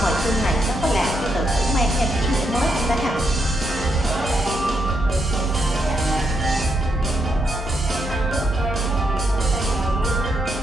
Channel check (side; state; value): both; normal; correlation 0.79